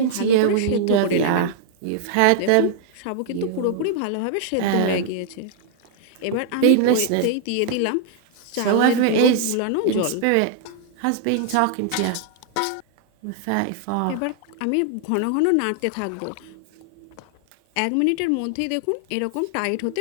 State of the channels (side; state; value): both; different; correlation -0.01